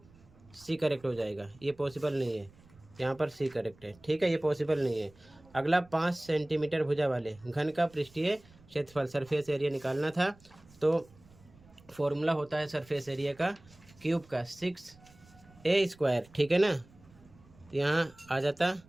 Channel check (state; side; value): noise; right; rumble, 26 dB below the sound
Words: सी करेक्ट हो जाएगा। ये पॉसिबल नहीं है, यहाँ पर सी करेक्ट है। ठीक है, ये पॉसिबल नहीं है। अगला 5 सेंटीमीटर भुजा वाले घन का पृष्ठीय क्षेत्रफल सरफेस एरिया निकालना था, तो फॉर्मूला होता है सरफेस एरिया का क्यूब का 6a²। ठीक है ना, तो यहाँ आ जाता